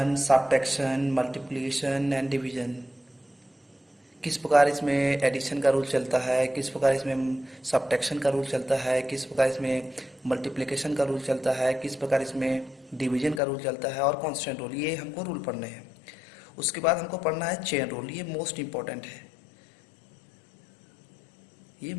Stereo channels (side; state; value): right; drops out; at 13.4 s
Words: subtraction, multiplication and division. किस प्रकार इसमें एडिशन का रूल चलता है, किस प्रकार इसमें सब्ट्रैक्शन का रूल चलता है, किस प्रकार इसमें मल्टीप्लिकेशन का रूल चलता है, किस प्रकार इसमें डिवीजन का रूल चलता है, और कांस्टेंट रूल. ये हमको रूल पढ़ने हैं. उसके बाद हमको पढ़ना है चेन रूल. ये मोस्ट इम्पोर्टेंट है, ये